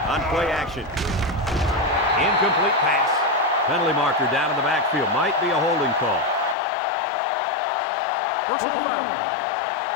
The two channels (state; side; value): drops out; right; at 6.6 s